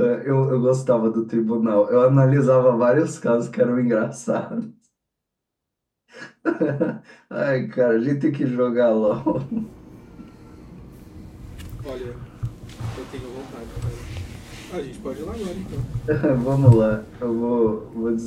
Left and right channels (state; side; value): identical; both; correlation 1.00